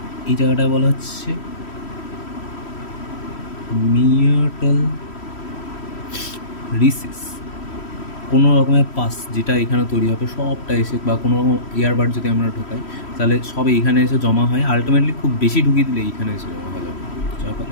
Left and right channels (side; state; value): right; late; 3.1 ms